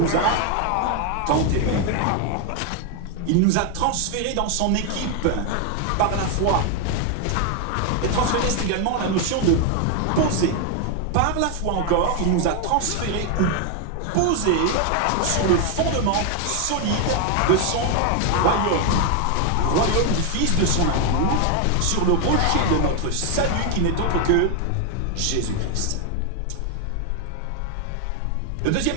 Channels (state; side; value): different; both; correlation 0.01